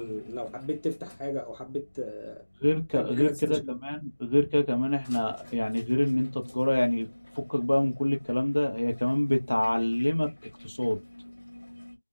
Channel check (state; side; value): inverted; both; correlation -1.00